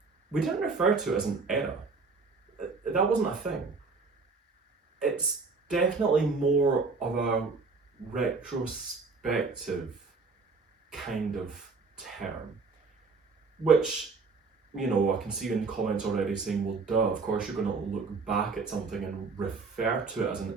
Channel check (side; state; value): left; quieter; 4.4 dB